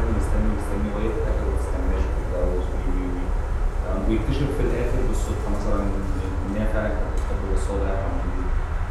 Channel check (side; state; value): both; identical; correlation 1.00